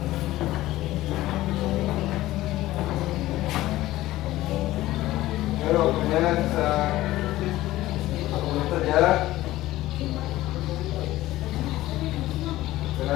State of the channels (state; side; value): quieter; right; 16.3 dB